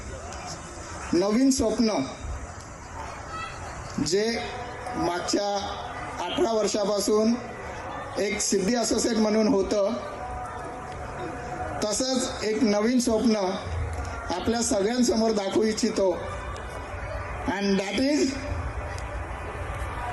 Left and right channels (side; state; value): both; identical; correlation 1.00